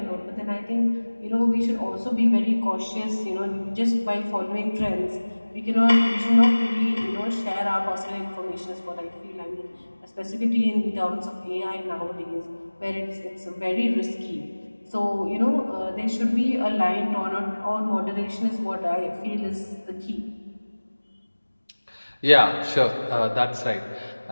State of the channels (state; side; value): inverted; both; correlation -1.00